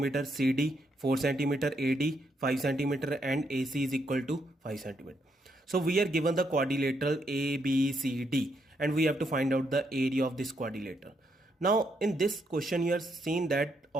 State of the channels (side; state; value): both; normal; correlation 0.77